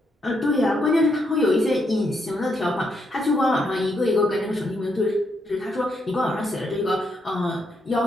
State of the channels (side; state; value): both; normal; correlation 0.78